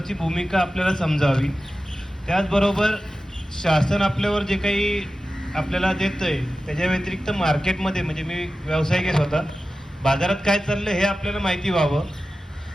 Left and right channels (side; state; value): both; normal; correlation 0.94